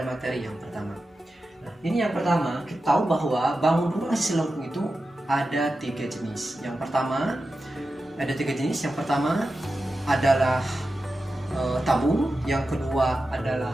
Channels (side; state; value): both; normal; correlation 0.92